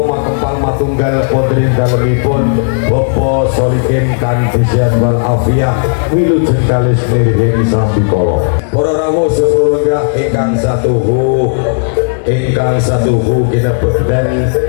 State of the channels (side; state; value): right; silent; digital silence